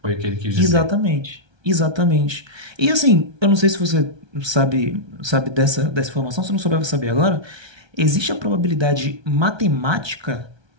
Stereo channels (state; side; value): late; left; 1.3 ms